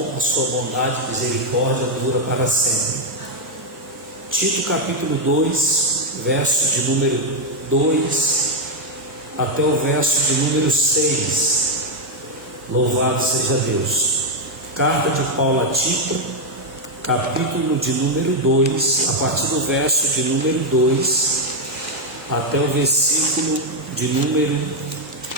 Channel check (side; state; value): both; normal; correlation 0.02